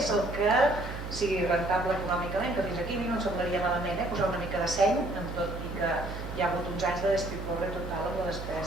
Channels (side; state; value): right; noise; hum, 9 dB below the sound